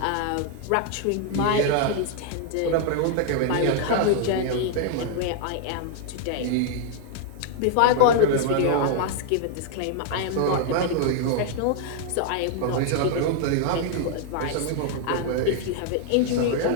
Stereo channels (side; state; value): both; different; correlation 0.00